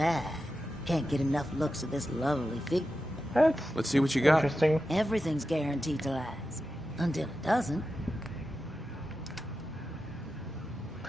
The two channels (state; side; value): normal; both; correlation 0.91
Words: Can't get enough looks at this lovely figure. Let's see what you got. Interesting. Everything's guaranteed to last. Until it doesn't.